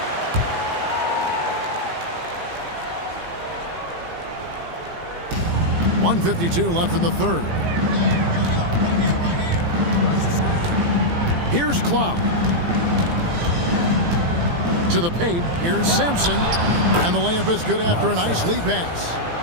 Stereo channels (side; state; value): left; late; 18 ms